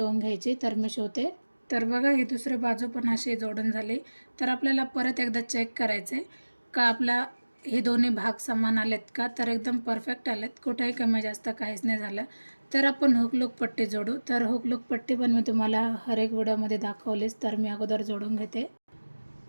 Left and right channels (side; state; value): both; inverted; correlation -1.00